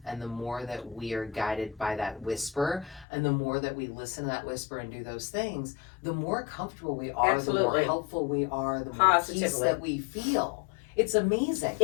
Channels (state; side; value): drops out; right; at 3.1 s